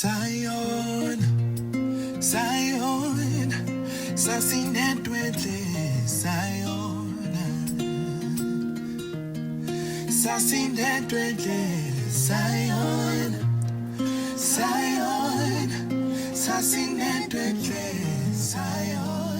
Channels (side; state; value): both; identical; correlation 1.00